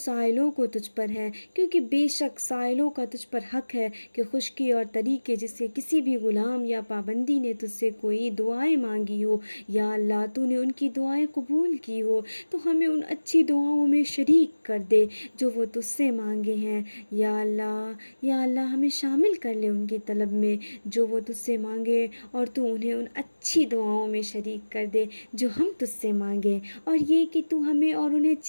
کو تجھ پر ہے، کیونکہ بے شک سائلوں کا تجھ پر حق ہے کہ خشکی اور طریقے جس سے کسی بھی غلام یا پابندی نے تجھ سے کوئی دعائیں مانگی ہو، یا اللہ تو نے ان کی دعائیں قبول کی ہو تو ہمیں ان اچھی دعاؤں میں شریک کر دے جو وہ تجھ سے مانگے ہیں، یا اللہ ہمیں شامل کر لے ان کی طلب میں جو وہ تجھ سے مانگے، اور تو انہیں ان اچھی دعاؤں میں شریک کر دے جو ہم تجھ سے مانگیں، اور یہ کہ تو ہمیں اور انہیں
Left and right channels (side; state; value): both; inverted; correlation -1.00